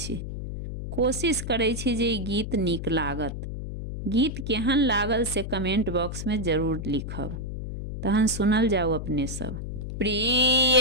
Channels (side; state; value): left; noise; hum, 6 dB below the sound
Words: कोशिश करै छी जे ई गीत नीक लागत। गीत केहन लागल से कमेंट बॉक्स में जरूर लिखब। तहन सुनल जाओ अपने सब।